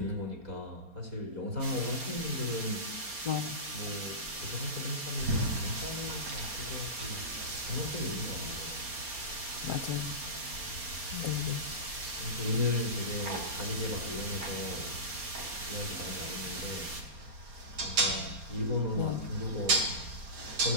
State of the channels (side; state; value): left; late; 4.3 ms